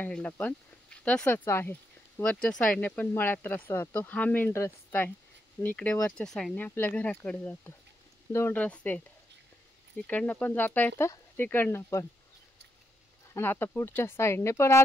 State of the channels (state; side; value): normal; both; correlation 0.81